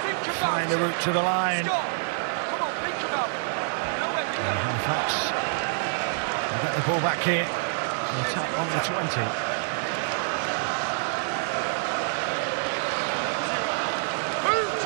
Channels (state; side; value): silent; left; 57 dB below the other